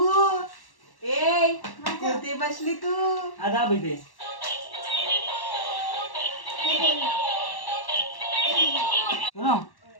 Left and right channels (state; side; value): late; right; 1.1 ms